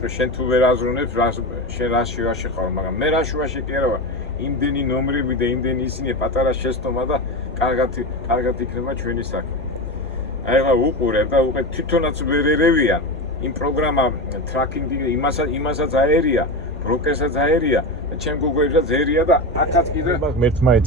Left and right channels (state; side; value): normal; both; correlation 0.20